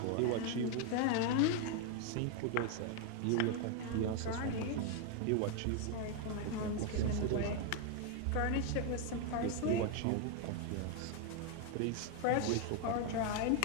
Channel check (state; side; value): different; both; correlation 0.01